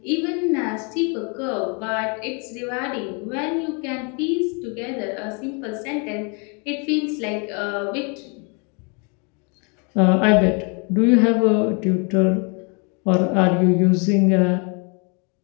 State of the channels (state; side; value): quieter; right; 34.5 dB